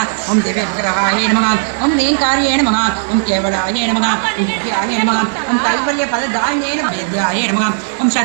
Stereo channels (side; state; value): left; silent; digital silence